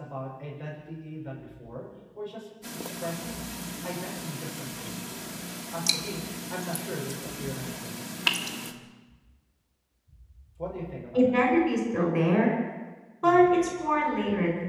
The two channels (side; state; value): both; identical; correlation 1.00